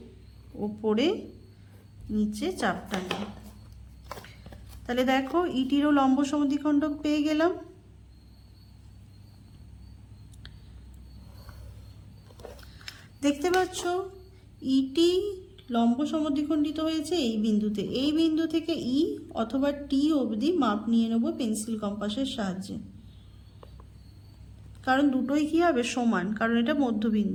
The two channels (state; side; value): identical; both; correlation 1.00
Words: ওপরে নিচে চাপ টানবে। তাহলে দেখো ETরও লম্ব সমদ্বিখণ্ডক পেয়ে গেলাম। দেখতে পাচ্ছ ET লম্ব সমদ্বিখণ্ডিত হয়েছে এই বিন্দুতে। এই বিন্দু থেকে E অথবা T অবধি মাপ নিয়ে নেব পেন্সিল কম্পাসের সাহায্যে, কারণ দুটোই কি হবে? সমান, কারণ এটা